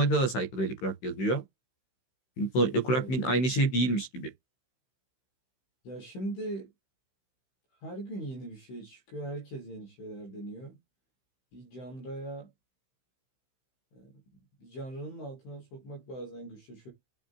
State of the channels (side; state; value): right; late; 16 ms